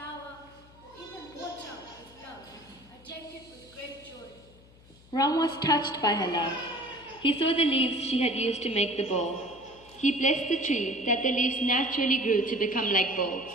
or even water with love, I take it with great joy. Ram was touched by her love. He saw the leaves she had used to make the bowl. He blessed the tree that the leaves naturally grew to become like bowls.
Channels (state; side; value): noise; left; hum, 25 dB below the sound